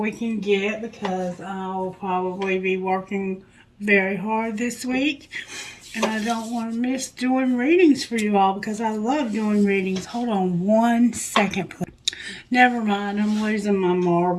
can get because I'll probably be working very hard this week. And I don't want to miss doing readings for you all because I love doing readings. Hold on 1 second, please. Never mind, I'm losing my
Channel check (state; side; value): identical; both; correlation 1.00